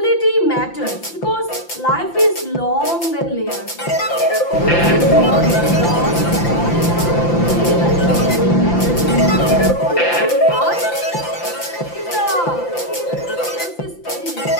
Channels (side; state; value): right; late; 5.8 ms